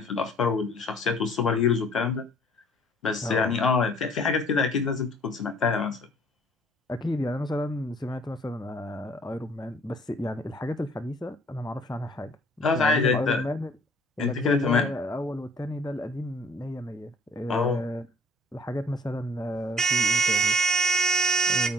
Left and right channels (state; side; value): normal; both; correlation 0.57